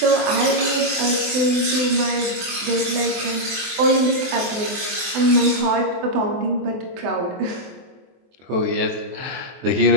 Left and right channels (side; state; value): left; late; 23 ms